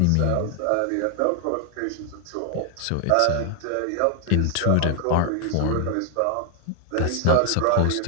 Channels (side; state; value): both; different; correlation 0.00